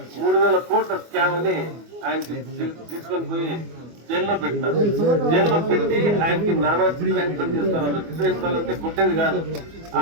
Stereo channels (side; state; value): left; late; 24 ms